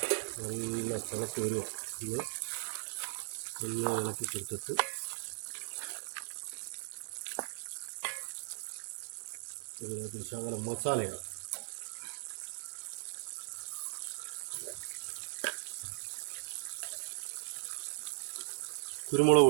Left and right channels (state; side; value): silent; left; digital silence